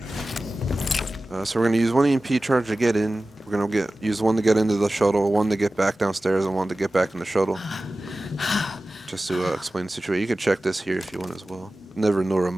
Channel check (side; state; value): both; normal; correlation 0.96